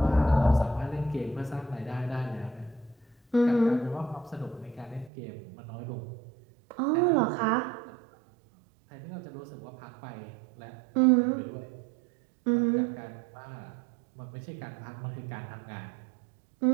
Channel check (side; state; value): left; drops out; at 5.1 s